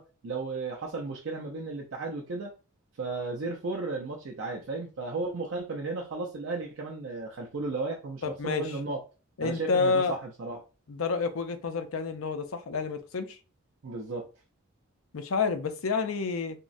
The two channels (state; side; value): normal; both; correlation -0.11